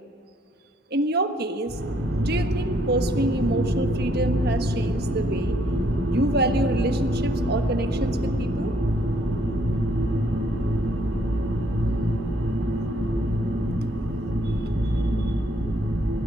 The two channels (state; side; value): normal; both; correlation 0.68